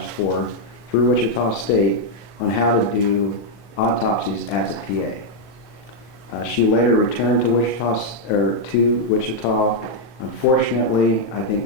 for through Wichita State on how to do autopsies as a PA. She later returned to Wichita. Unfortunately, I think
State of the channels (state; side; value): late; right; 31 ms